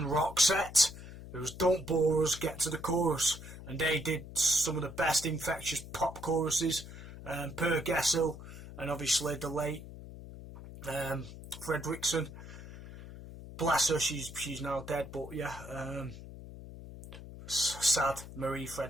Roxette. It was Don't Bore Us, Get to the Chorus, and they did some of the best infectious pop choruses. Per Gessel, and obviously the late Fredriksson. Bless her, she's now dead, but yeah, sad. Marie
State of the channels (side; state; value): left; noise; hum, 13 dB below the sound